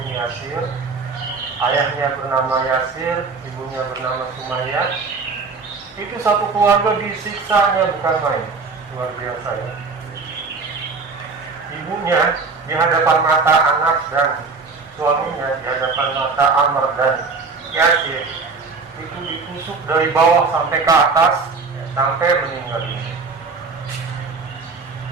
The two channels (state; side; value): quieter; left; 4.4 dB